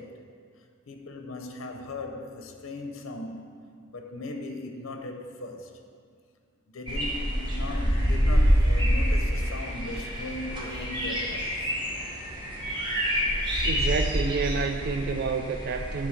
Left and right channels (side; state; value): both; normal; correlation 0.65